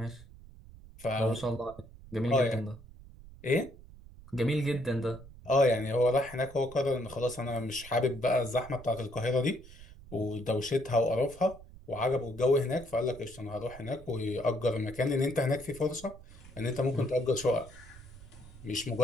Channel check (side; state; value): right; noise; rumble, 19 dB below the sound